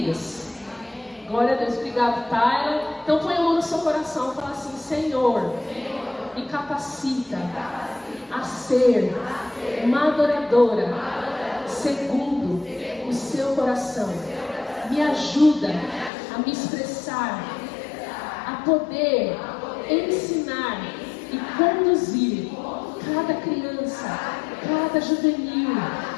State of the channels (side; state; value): right; drops out; at 16.1 s